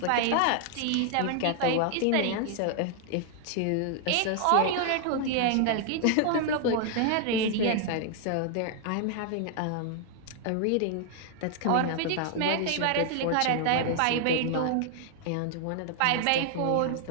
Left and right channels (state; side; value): different; both; correlation 0.00